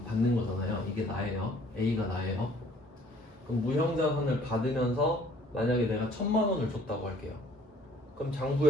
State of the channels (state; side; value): normal; both; correlation 0.57